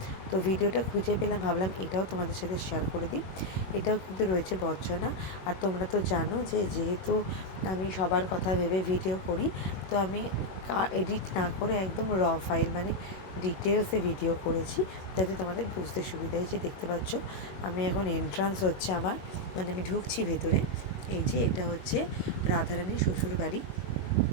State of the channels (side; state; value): right; late; 21 ms